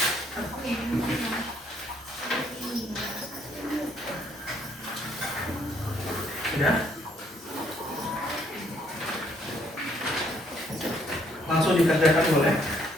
Ya. Langsung dikerjakan boleh.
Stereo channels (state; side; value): normal; both; correlation 0.68